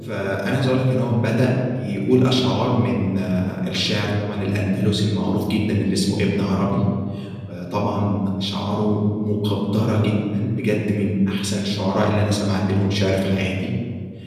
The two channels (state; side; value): identical; both; correlation 1.00